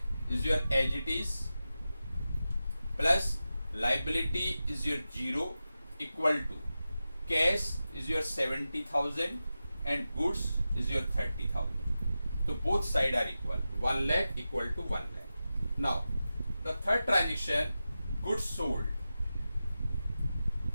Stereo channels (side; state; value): both; inverted; correlation -0.93